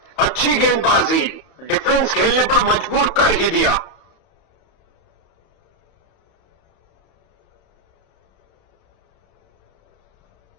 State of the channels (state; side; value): late; right; 31 ms